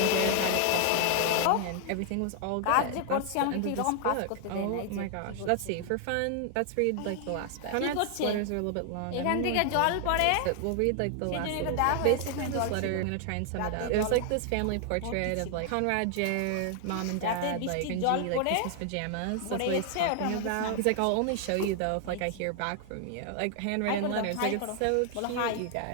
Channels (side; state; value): both; different; correlation 0.00